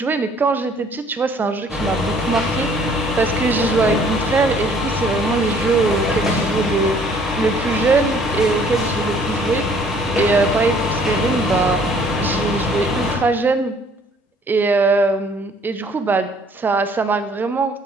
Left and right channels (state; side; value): normal; both; correlation 0.59